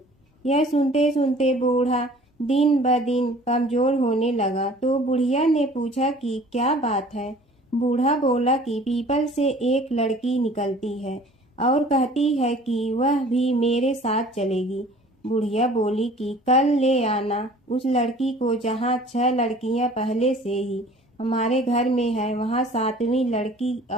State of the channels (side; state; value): both; normal; correlation 0.49